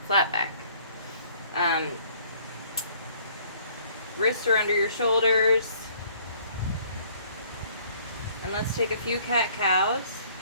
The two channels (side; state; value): both; inverted; correlation -0.59